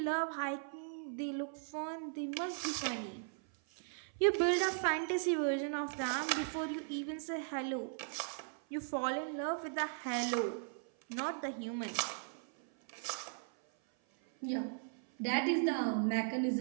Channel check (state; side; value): silent; left; 53 dB below the other